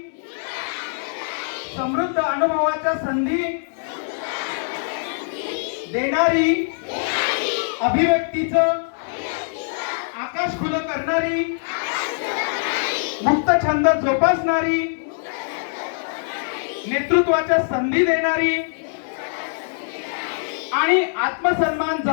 समृद्ध अनुभवाच्या संधी देणारी अभिव्यक्तीचं आकाश खुलं करणारी मुक्त छंद जोपासणारी नेतृत्वाच्या संधी देणारी आणि आत्मसन्मान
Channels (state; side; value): silent; right; digital silence